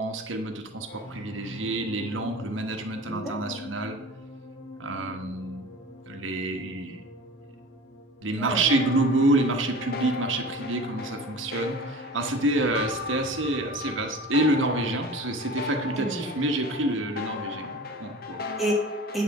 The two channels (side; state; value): both; normal; correlation 0.38